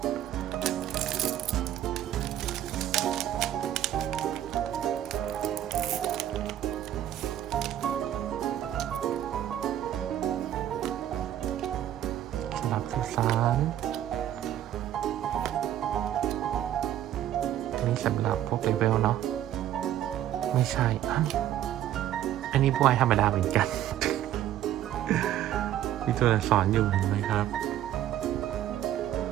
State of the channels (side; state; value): left; quieter; 11.9 dB